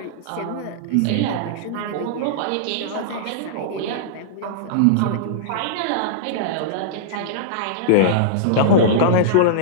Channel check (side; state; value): both; different; correlation -0.02